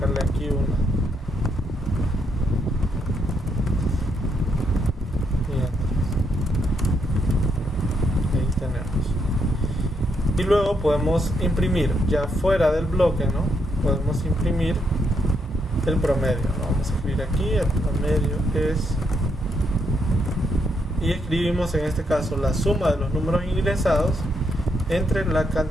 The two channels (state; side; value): normal; both; correlation 0.77